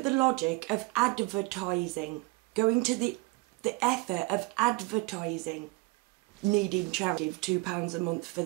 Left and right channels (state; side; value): quieter; left; 25.2 dB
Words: the logic of advertising, going to the effort of advertising, needing charity of £2 a month for